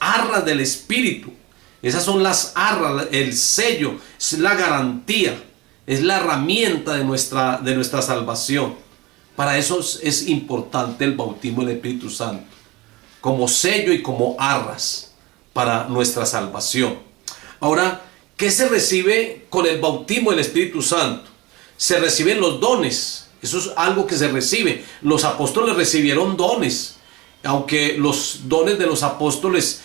del Espíritu. Esas son las arras, el sello, es la garantía, es la herramienta de nuestra salvación. Para eso es importante el bautismo del Espíritu Santo, como sello y como arras para nuestra salvación. Ahora, ¿qué se recibe con el bautismo del Espíritu Santo? Se reciben los dones. Eso es algo que se recibe. Los apóstoles recibieron dones. Aunque los dones de los apóstoles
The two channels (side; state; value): left; quieter; 21.0 dB